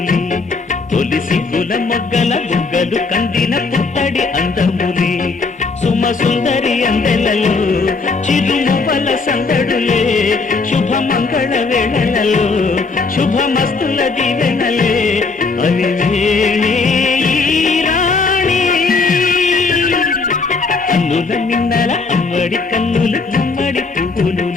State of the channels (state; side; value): quieter; right; 4.2 dB